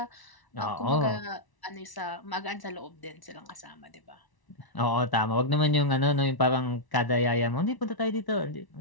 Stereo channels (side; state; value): right; late; 1.0 ms